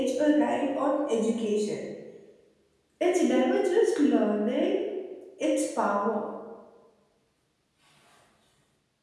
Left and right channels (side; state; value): both; identical; correlation 1.00